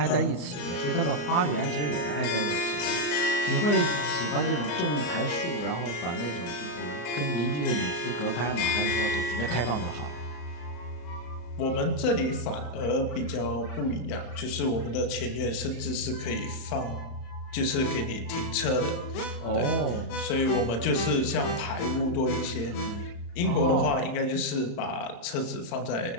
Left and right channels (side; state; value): right; late; 34 ms